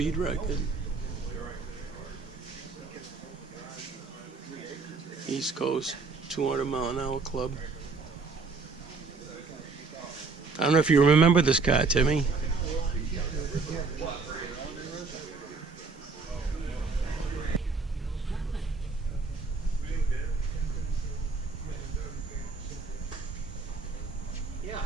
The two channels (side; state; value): left; quieter; 4.2 dB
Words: record. East Coast 200 mile an hour club. I don't know if you remember this car, Timmy.